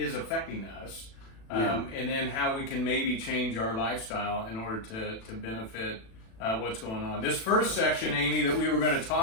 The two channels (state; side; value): late; right; 36 ms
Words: affecting us, and then how we can maybe change our lifestyle in order to benefit what's going on. This first section, Amy, that we were going to